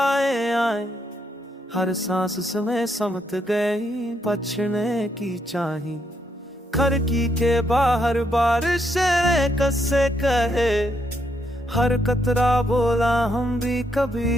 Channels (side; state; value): both; normal; correlation 0.76